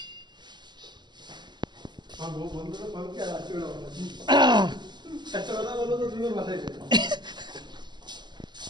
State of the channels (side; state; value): left; late; 0.21 ms